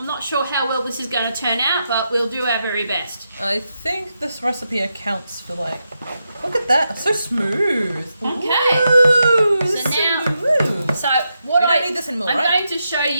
not sure how well this is going to turn out, but we'll do our very best. I think this recipe accounts for look at that, it's so smooth. Okay. Ooh, So now, smooth. so what We don't need this anymore, I'm right? going to show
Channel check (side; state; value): both; inverted; correlation -0.85